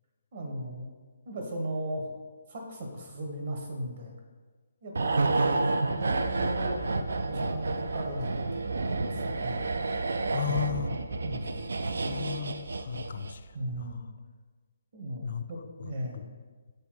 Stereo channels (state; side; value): inverted; both; correlation -0.82